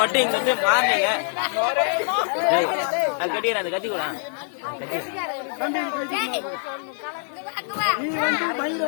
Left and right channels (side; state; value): right; silent; 57 dB below the other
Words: இங்க இருந்து மாறினீங்க. அது கட்டிக்கிறேன், அந்த கட்டி கூட நீ வந்து மயிரை